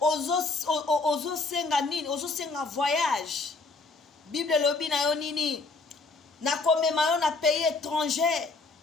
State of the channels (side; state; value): right; quieter; 3.8 dB